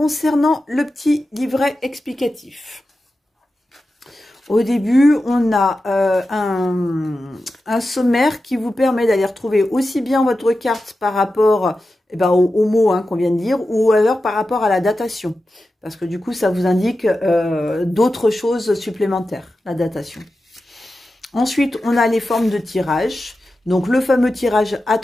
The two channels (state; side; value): normal; both; correlation 0.92